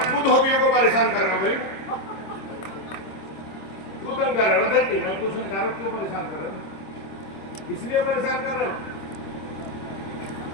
तू धोबियों को परेशान कर रहा हूँ भाई, क्यों तंग कर रहे हो? देखिए मैं पूछना चाह रहा हूँ, क्यों परेशान कर रहे हो? इसलिए परेशान कर रहे हो?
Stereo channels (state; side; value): late; right; 26 ms